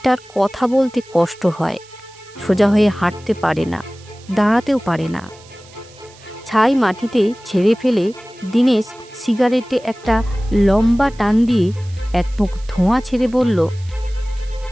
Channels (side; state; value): right; noise; hiss, 24 dB below the sound